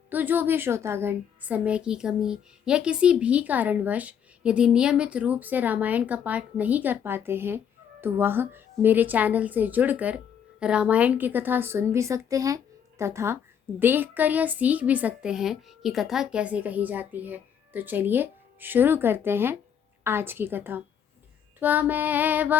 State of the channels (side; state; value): right; quieter; 8.3 dB